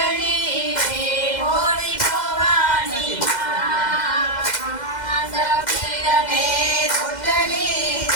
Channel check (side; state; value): right; late; 2.0 ms